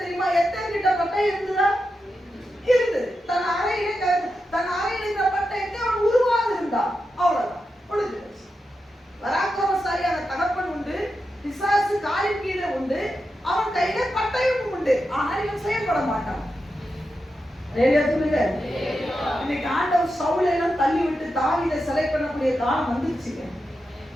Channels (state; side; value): normal; both; correlation 0.88